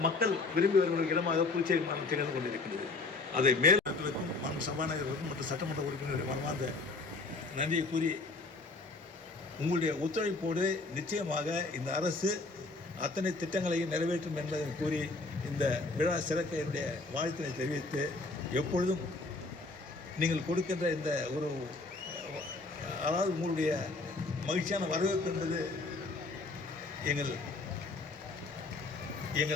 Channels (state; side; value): quieter; right; 3.5 dB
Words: மக்கள் விரும்பி வருகிற இடமாக புதுச்சேரி மாநிலம் திகழ்ந்து கொண்டிருக்கிறது. அதை மேலும் மண் சபாநாயகர்களுக்கும் மற்றும் சட்டமன்ற உறுப்பினர்கள் மனமார்ந்த நன்றியை கூறி, உங்களுடைய ஒத்துழைப்போடு நிச்சயமாக இந்த அரசு அத்தனை திட்டங்களையும் நிறைவேற்றும் என்பதை கூறி இந்த விழா சிறக்க என்னுடைய வாழ்த்தினை தெரிவித்து, எப்பொழுதும் நீங்கள் கொடுக்கின்ற இந்த ஒரு அதாவது உங்களுடைய மகிழ்ச்சியான வரவேற்பு என்பது